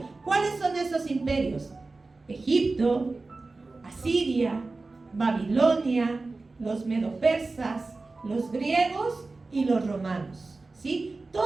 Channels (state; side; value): quieter; left; 3.5 dB